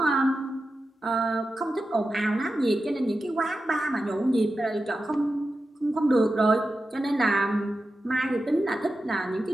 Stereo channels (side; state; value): both; normal; correlation 0.91